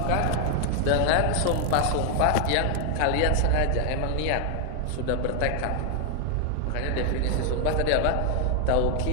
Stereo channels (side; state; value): both; different; correlation 0.00